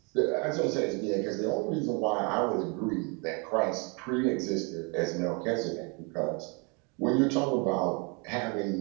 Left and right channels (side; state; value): left; quieter; 32.8 dB